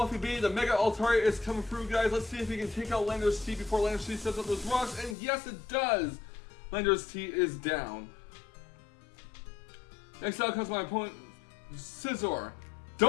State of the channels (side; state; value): right; drops out; at 5.2 s